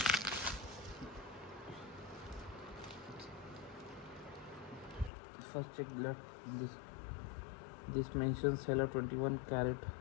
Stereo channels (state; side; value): drops out; right; at 5.1 s